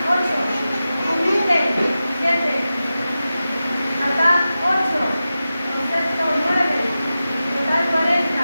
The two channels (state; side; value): inverted; both; correlation -0.93